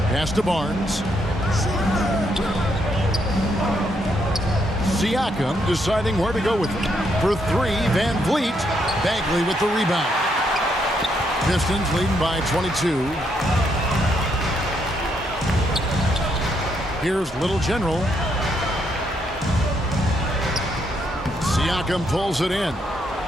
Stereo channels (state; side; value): normal; both; correlation 0.76